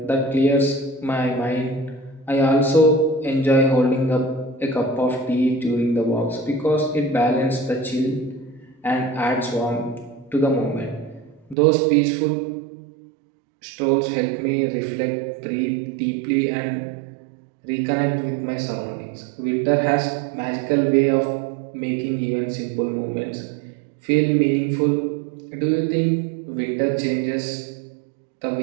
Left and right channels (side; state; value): left; drops out; at 11.6 s